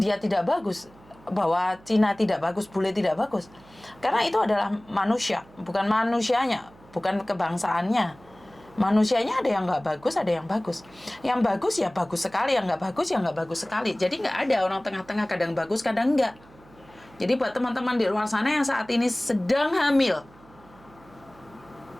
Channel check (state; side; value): noise; right; hum, 25 dB below the sound